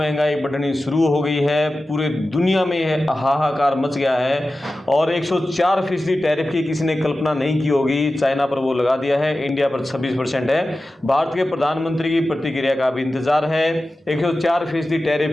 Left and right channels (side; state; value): both; normal; correlation 0.94